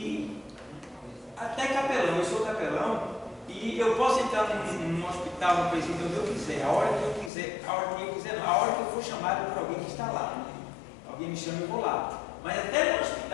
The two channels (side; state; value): right; drops out; at 7.3 s